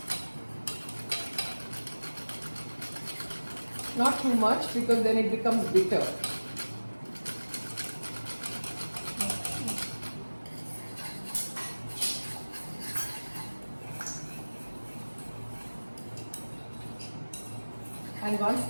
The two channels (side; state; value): both; inverted; correlation -1.00